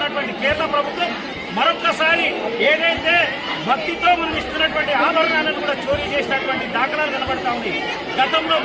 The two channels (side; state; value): both; identical; correlation 1.00